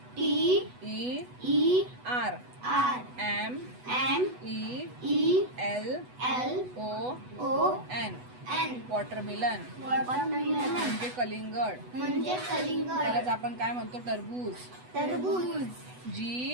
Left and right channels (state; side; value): late; left; 8.1 ms